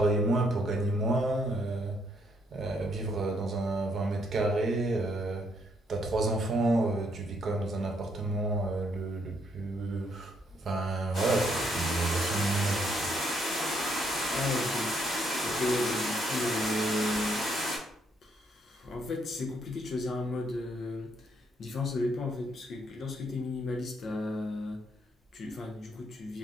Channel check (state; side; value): normal; both; correlation 0.72